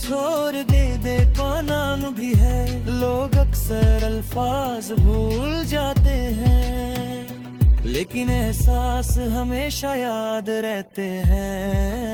दे का नाम भी है। लोग अक्सर अल्फाज भूल जाते हैं, लेकिन एहसास हमेशा याद रहते हैं।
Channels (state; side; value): identical; both; correlation 1.00